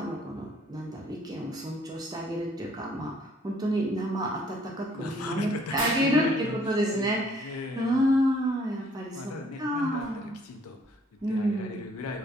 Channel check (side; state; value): both; normal; correlation 0.62